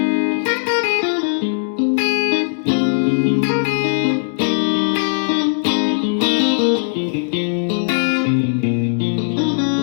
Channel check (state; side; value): silent; right; digital silence